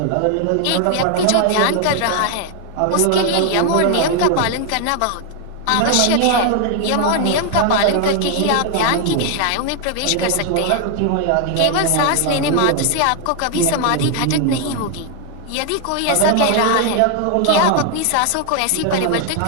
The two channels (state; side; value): different; both; correlation 0.00